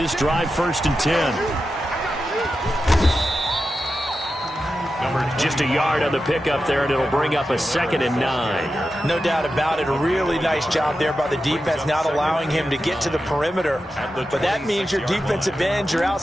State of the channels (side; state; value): both; normal; correlation 0.91